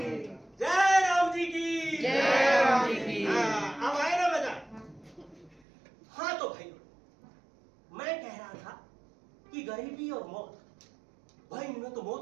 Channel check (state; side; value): drops out; left; at 5.6 s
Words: जयराम जी की जयराम जी की। हाँ, अब आए ना मजा। हाँ तो भाई मैं कह रहा था कि गरीबी और मौत, भाई इनमें तो